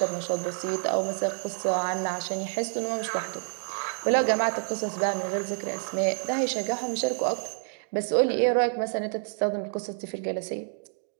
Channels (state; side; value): silent; left; digital silence